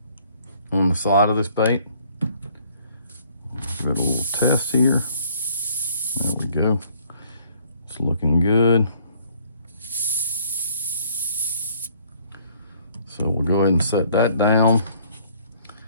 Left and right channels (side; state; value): both; inverted; correlation -0.61